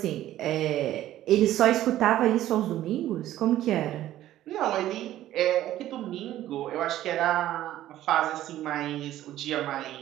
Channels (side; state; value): left; quieter; 13.5 dB